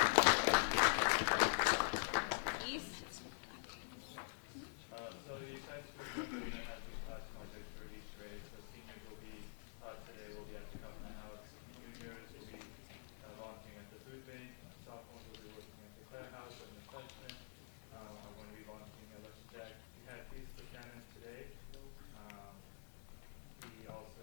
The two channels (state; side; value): silent; right; digital silence